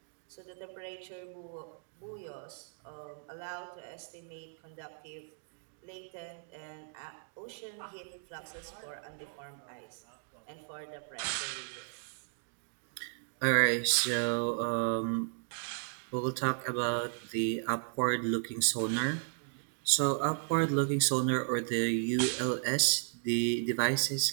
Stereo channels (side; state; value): left; silent; digital silence